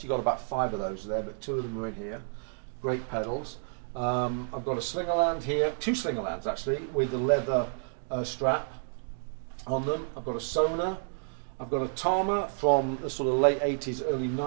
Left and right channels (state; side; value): silent; left; digital silence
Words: got about 5 of those there, but 2 of them are in here. Great pedals. I've got a Slingerland here, 2 Slingerlands actually, with the leather strap on them. I've got a Sona. I've got a Tama from the sort of late 80s, early